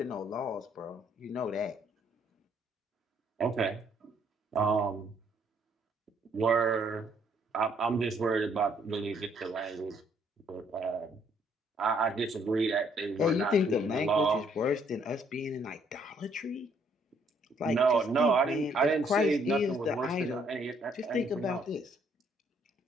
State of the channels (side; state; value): both; normal; correlation 0.67